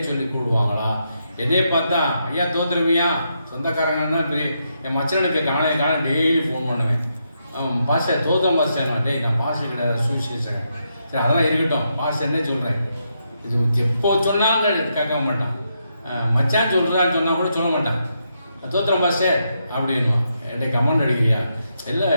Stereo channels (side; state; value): both; inverted; correlation -0.81